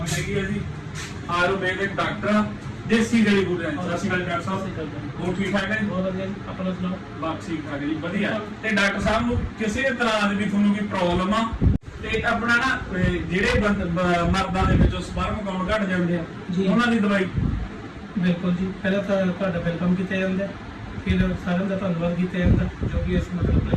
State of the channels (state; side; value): identical; both; correlation 1.00